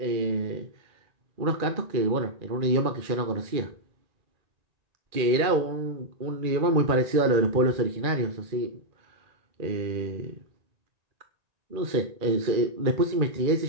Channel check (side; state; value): left; late; 2.4 ms